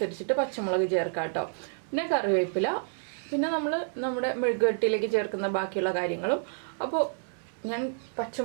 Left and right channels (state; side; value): silent; left; digital silence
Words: പച്ചമുളക് ചേർക്കാം കേട്ടോ. പിന്നെ കറിവേപ്പില, പിന്നെ നമ്മൾ നമ്മുടെ മെഴുകുവരട്ടിയിലേക്ക് ചേർക്കുന്ന ബാക്കിയുള്ള കാര്യങ്ങളും. അപ്പോൾ ഞാൻ